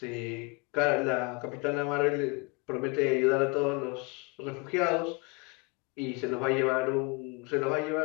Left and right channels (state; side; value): quieter; right; 28.4 dB